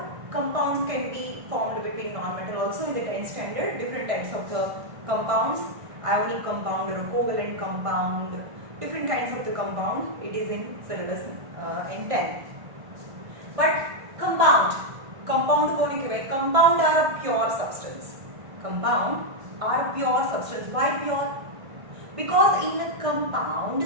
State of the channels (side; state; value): left; late; 1.5 ms